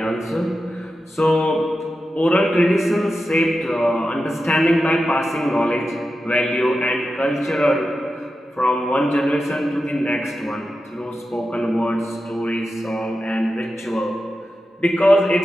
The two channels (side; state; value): both; normal; correlation 0.91